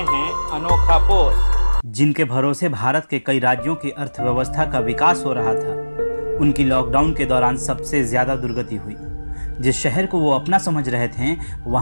हैं अनोखा पोस्ट। जिनके भरोसे भारत के कई राज्यों की अर्थव्यवस्था का विकास हो रहा था, उनकी लॉकडाउन के दौरान सबसे ज्यादा दुर्गति हुई। जिस शहर को वो अपना समझ रहे थे,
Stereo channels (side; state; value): both; inverted; correlation -1.00